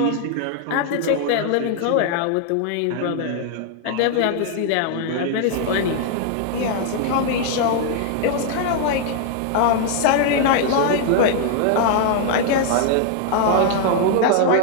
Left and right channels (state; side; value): different; both; correlation 0.00